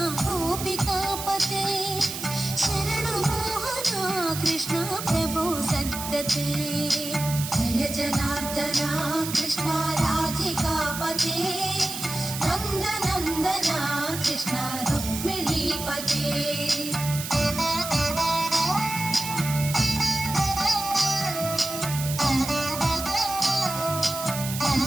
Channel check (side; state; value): right; noise; hiss, 7 dB below the sound